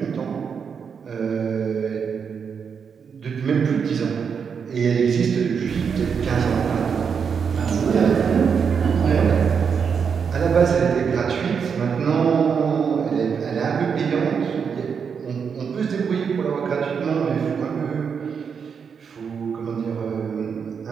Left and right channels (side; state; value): left; quieter; 6.5 dB